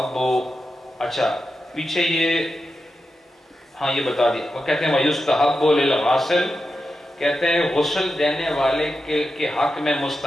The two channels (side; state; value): both; normal; correlation 0.89